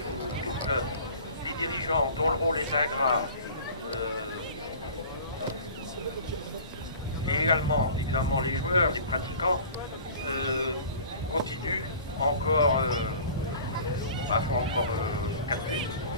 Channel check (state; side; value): inverted; both; correlation -0.43